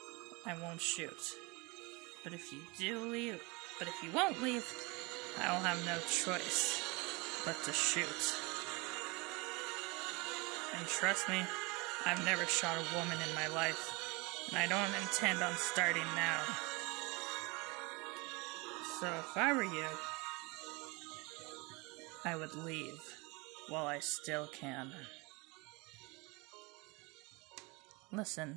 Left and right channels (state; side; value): quieter; left; 26.8 dB